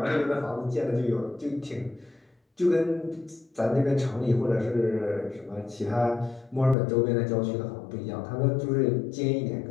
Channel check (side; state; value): right; drops out; at 6.8 s